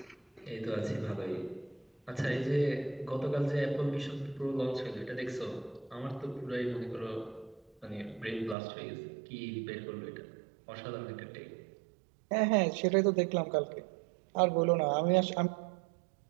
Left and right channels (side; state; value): left; drops out; at 8.6 s